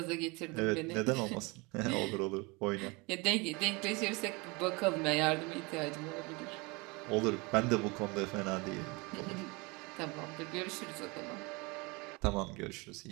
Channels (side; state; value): left; quieter; 26.9 dB